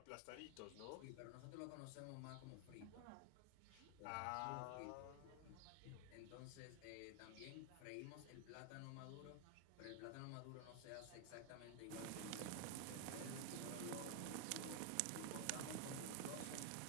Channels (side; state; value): both; different; correlation 0.00